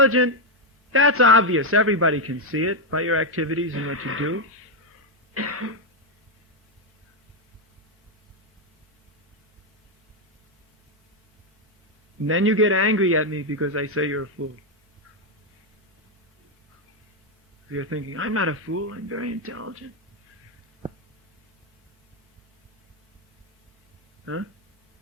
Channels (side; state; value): both; normal; correlation 0.02